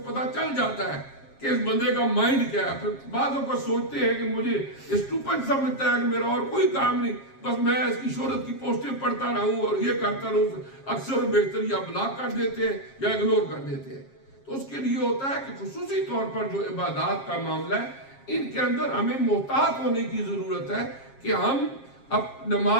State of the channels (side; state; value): right; late; 7.4 ms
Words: پتہ چل جاتا ہے کہ اس بندے کا مائنڈ کیا ہے. پھر بعضوں کو سوچتے ہیں کہ مجھے اسٹوپڈ سمجھتا ہے کہ میرا اور کوئی کام نہیں, بس میں اس کی شہرت کی پوسٹیں پڑھتا رہوں اور یہ کرتا رہوں. اکثر بہتر یا بلاک کر دیتے ہیں یا اگنور کر دیتے ہیں. تو اس کے لیے ہوتا ہے کہ خصوصی طور پر جو عبادات کا معاملہ ہے, ان کے اندر ہمیں محتاط ہونے کی ضرورت ہے کہ ہم اب